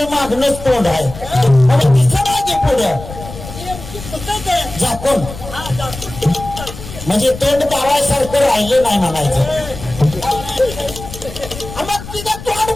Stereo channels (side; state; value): left; noise; rumble, 13 dB below the sound